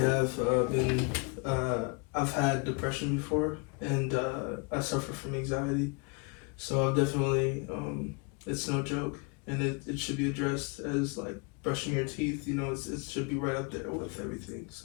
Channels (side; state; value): right; quieter; 31.8 dB